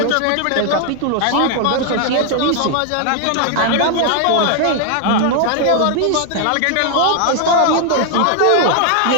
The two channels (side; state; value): both; different; correlation 0.00